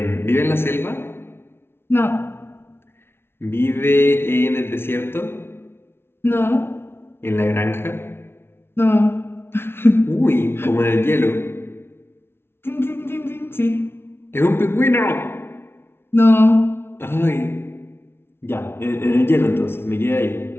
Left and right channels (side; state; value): right; late; 0.12 ms